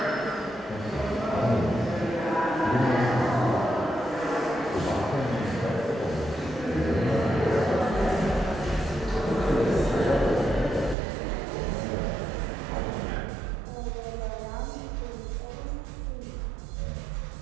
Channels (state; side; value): drops out; left; at 11.0 s